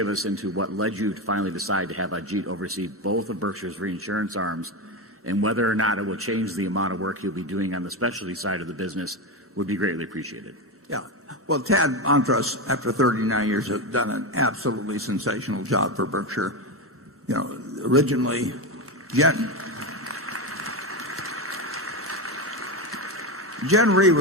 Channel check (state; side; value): normal; both; correlation 0.15